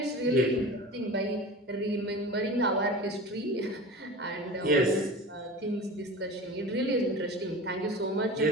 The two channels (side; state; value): both; normal; correlation 0.34